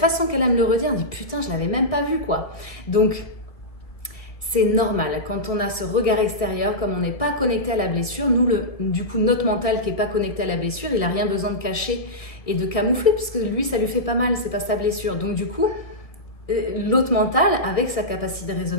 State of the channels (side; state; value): right; late; 1.7 ms